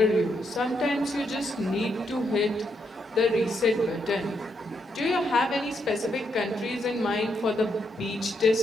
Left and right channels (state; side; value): normal; both; correlation 0.78